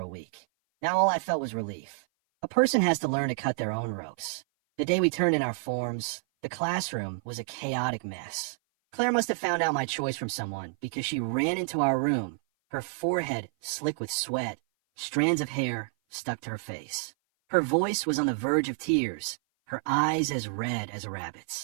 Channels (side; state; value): left; silent; 56 dB below the other